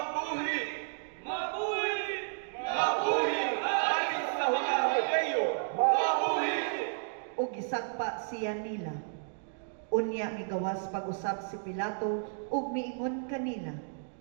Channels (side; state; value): left; silent; digital silence